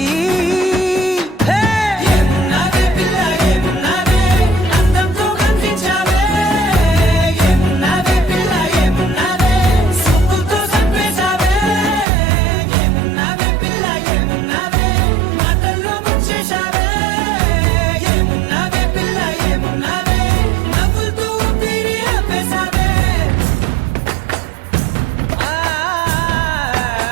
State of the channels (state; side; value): drops out; left; at 12.1 s